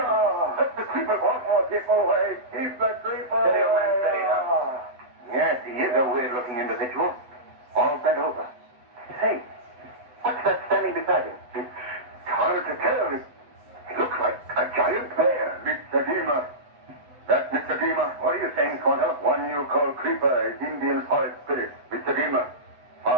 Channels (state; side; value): late; left; 8.0 ms